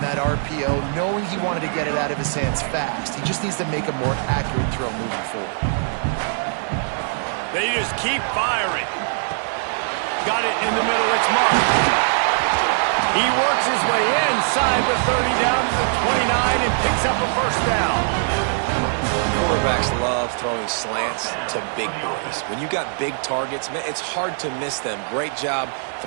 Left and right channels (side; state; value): left; silent; digital silence